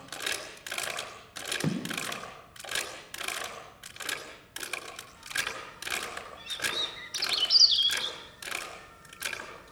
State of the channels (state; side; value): identical; both; correlation 1.00